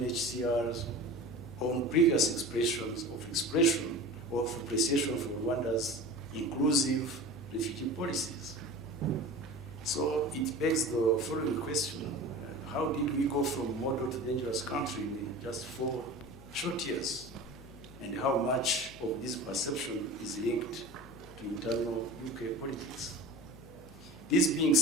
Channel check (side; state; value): left; noise; hum, 20 dB below the sound